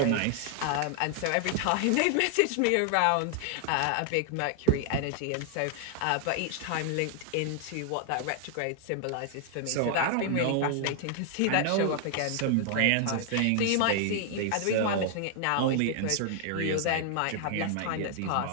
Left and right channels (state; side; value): different; both; correlation 0.00